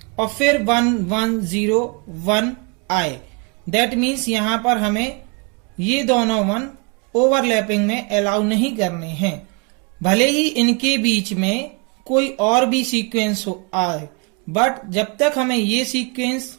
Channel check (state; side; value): quieter; left; 32.7 dB